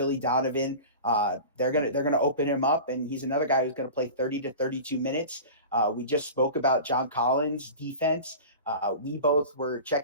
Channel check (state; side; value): inverted; both; correlation -0.34